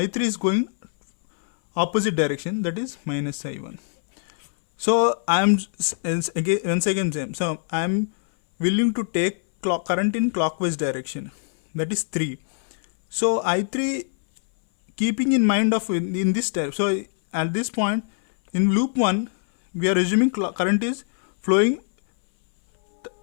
is going opposite direction. That is minus I1. So I am once again same. So I am willing to take current in clockwise direction. That is 3. So I3, keeping in mind of in this step, so at this point in loop 1 we are assuming current is flowing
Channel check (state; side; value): silent; right; 60 dB below the other